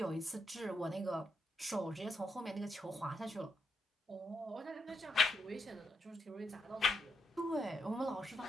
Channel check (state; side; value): normal; both; correlation 0.81